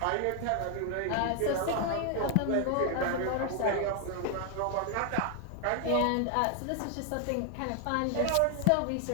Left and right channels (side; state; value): both; different; correlation 0.00